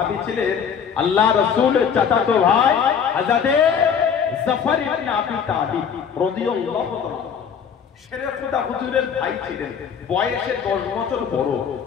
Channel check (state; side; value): quieter; right; 7.2 dB